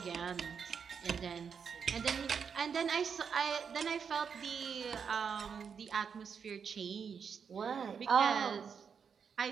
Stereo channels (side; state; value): left; quieter; 6.6 dB